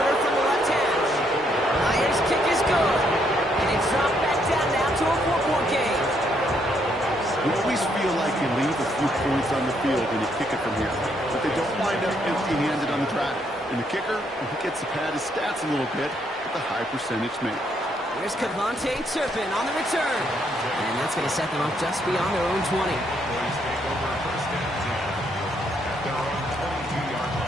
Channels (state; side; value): normal; both; correlation 0.73